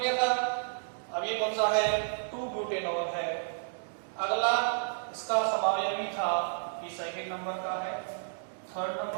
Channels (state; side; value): silent; left; digital silence